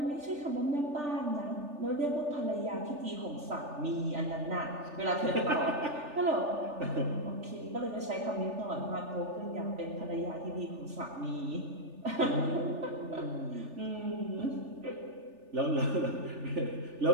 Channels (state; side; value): late; left; 3.4 ms